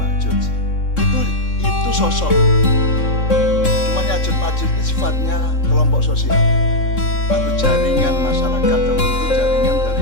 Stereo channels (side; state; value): right; late; 3.6 ms